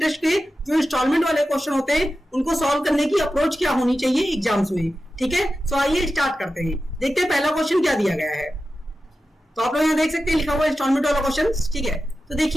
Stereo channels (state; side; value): normal; both; correlation 0.93